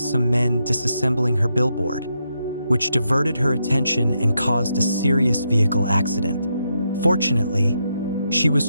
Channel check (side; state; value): both; inverted; correlation -0.82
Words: some men disassembling her billboard, which diverted her attention and caused a serious vehicle accident. Fortunately, she was